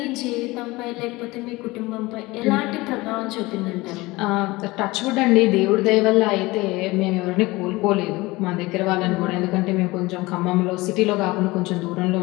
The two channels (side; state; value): right; quieter; 21.4 dB